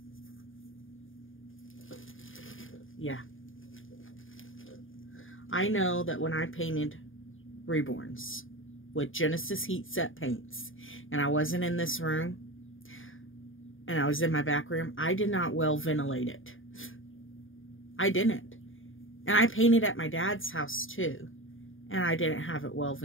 yeah, I know that when I painted Reborns with Genesis heat set paints, and I wasn't in this room, and I was in my back room, I did not well ventilate it. I didn't. And I painted at my dad's house too, and I didn't have it well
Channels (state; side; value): late; right; 0.58 ms